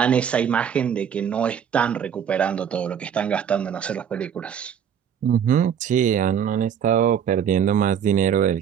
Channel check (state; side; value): quieter; left; 8.3 dB